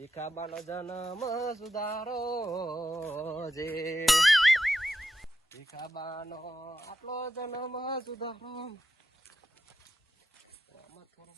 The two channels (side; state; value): both; normal; correlation 0.86